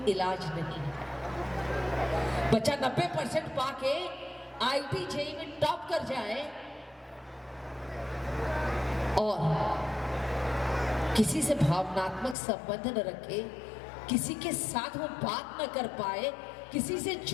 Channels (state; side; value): drops out; right; at 12.4 s